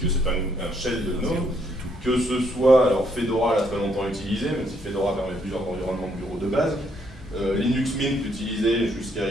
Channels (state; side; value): normal; both; correlation 0.71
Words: c'est un shell de GNOME, que ce soit, alors Fedora l'a très longtemps utilisé, même si Fedora permet plusieurs environnements de bureau de base, Linux Mint utilisé jusqu'à